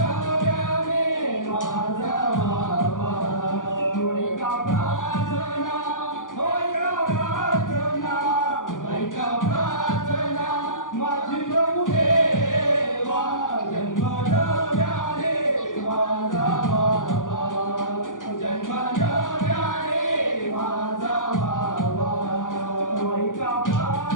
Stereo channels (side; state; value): right; late; 0.88 ms